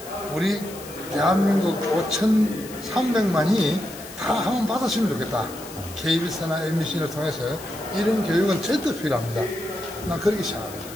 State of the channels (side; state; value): left; noise; hiss, 15 dB below the sound